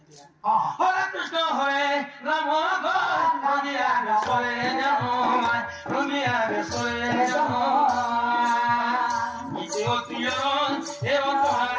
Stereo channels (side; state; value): both; identical; correlation 1.00